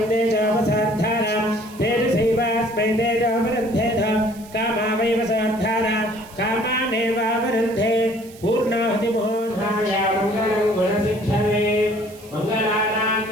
तेजोपसार्धारा तेजसैवास्मै तेजोपरुन्धेध कामा वैव सार्धारा कामानेवावरुन्धे पूर्णाहुति मुहूर्ताय मङ्गलं गुणसिद्धवे मङ्गलानां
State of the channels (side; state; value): right; noise; hiss, 22 dB below the sound